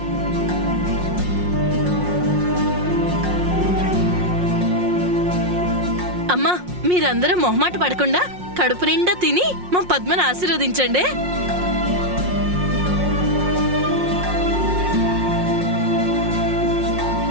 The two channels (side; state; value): left; late; 5.6 ms